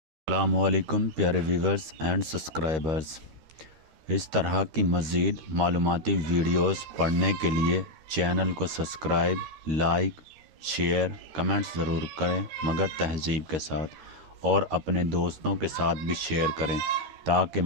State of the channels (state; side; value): late; left; 13 ms